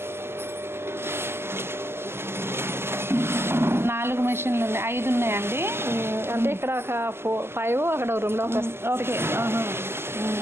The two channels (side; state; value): left; late; 0.12 ms